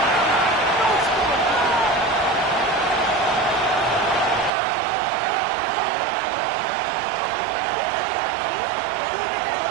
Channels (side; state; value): left; drops out; at 4.5 s